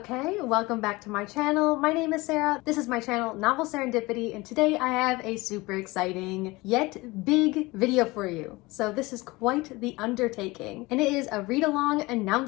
welcome back to my channel. My name is Sarah. This is my channel, Novel Serendipity, and today I have a super exciting yet big video for you. So this is quite the undertaking, and it is a read-along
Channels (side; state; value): right; quieter; 22.2 dB